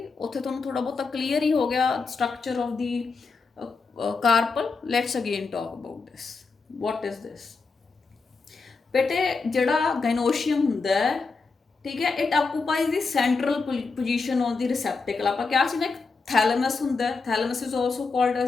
ਉੱਥੇ ਤੁਹਾਨੂੰ ਥੋੜਾ ਬਹੁਤਾ ਕਲੀਅਰ ਹੀ ਹੋ ਗਿਆ structure of the carpal. Let's again talk about this, what is this. ਬੇਟੇ ਜਿਹੜਾ ਗਾਇਨੋਸ਼ੀਅਮ ਹੁੰਦਾ ਹੈ, ਠੀਕ ਹੈ, ਇਟ ਆਕੂਪਾਈਜ਼ ਦੀ ਸੈਂਟਰਲ ਪੋਜੀਸ਼ਨ ਆਨ ਦੀ ਰਿਸੈਪਟੇਕਲ। ਆਪਾਂ ਕਿਹਾ ਸੀ ਨਾ ਇੱਕ ਥੈਲਮਸ ਹੁੰਦਾ, ਥੈਲਮਸ ਇਜ਼ ਆਲਸੋ ਕਾਲਡ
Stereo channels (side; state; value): right; quieter; 4.4 dB